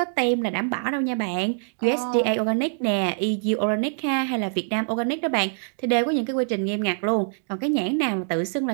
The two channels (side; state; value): left; silent; digital silence